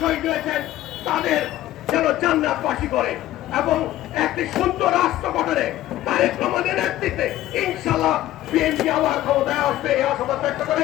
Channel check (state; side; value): quieter; right; 14.4 dB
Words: শহীদ হয়েছেন তাদের যেন জান্নাতবাসী করে, এবং একটি সুন্দর রাষ্ট্র গঠনে তারেক রহমানের নেতৃত্বে ইনশাআল্লাহ বিএনপি আবার ক্ষমতায় আসবে এই আশাবাদ ব্যক্ত করে